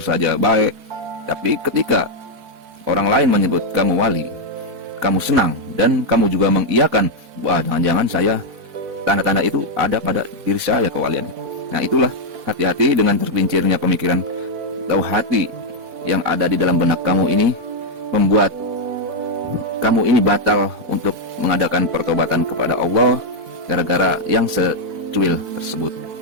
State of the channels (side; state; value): left; late; 4.5 ms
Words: baik. Tapi ketika orang lain menyebut kamu wali, kamu senang dan kamu juga mengiyakan, wah jangan-jangan saya, tanda-tanda itu ada pada diri saya kewalian. Nah itulah, hati-hati dengan tergelincirnya pemikiran atau hati yang ada di dalam benak kamu ini, membuat kamu ini batal untuk mengadakan pertobatan kepada Allah gara-gara yang secuil tersebut